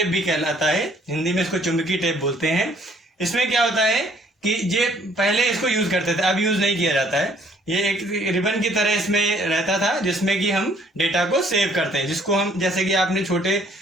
भी कहलाता है, हिंदी में इसको चुंबकीय टेप बोलते हैं। इसमें क्या होता है कि ये पहले इसको यूज करते थे, अब यूज नहीं किया जाता है। ये एक रिबन की तरह इसमें रहता था जिसमें कि हम डेटा को सेव करते हैं, जिसको हम जैसे कि आपने छोटे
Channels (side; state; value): both; normal; correlation 0.61